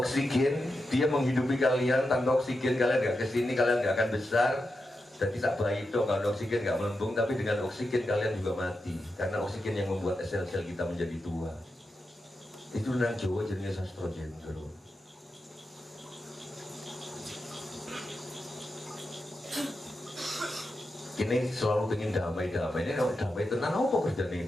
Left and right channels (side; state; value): both; normal; correlation 0.88